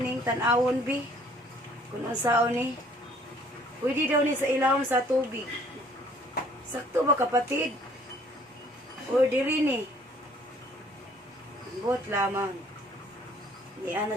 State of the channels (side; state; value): both; normal; correlation 0.58